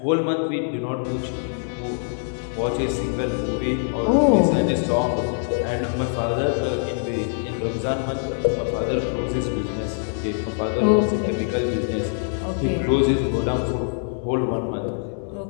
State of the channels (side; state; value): right; silent; digital silence